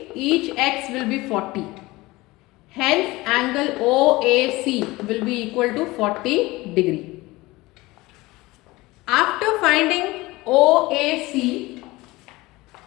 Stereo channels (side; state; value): right; quieter; 20.6 dB